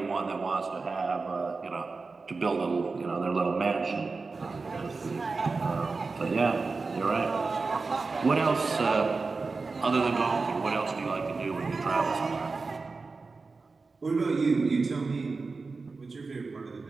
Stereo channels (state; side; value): quieter; left; 4.1 dB